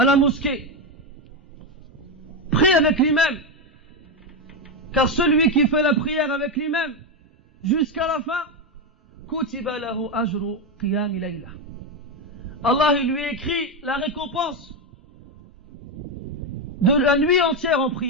la mosquée. Prie avec l'imam. Car celui qui fait la prière avec l'imam jusqu'à la fin, kutiba lahu ajru qiyam layla. Allah il lui écrit la récompense de la nuit entière en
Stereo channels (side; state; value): both; normal; correlation 0.09